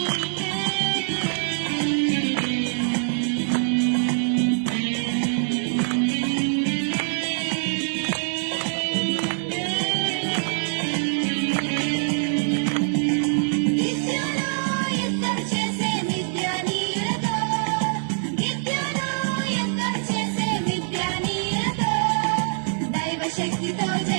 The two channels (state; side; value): silent; left; 60 dB below the other